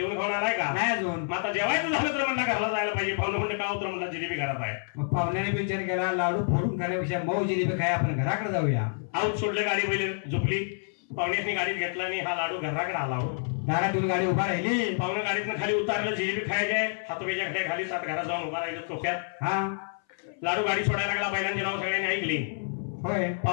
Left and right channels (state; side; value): silent; right; 59 dB below the other